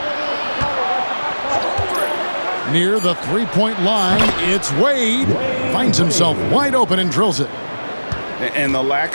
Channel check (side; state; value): both; inverted; correlation -1.00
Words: Near the three-point line, it's Wade. Finds himself wide open and drills it. And the lack